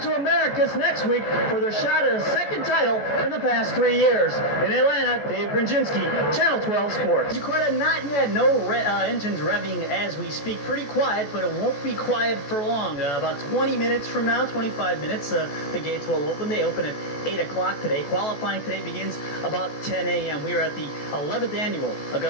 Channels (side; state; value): right; late; 14 ms